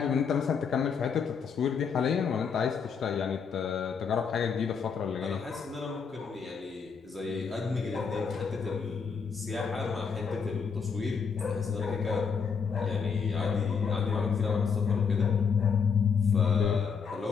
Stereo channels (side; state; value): right; quieter; 6.0 dB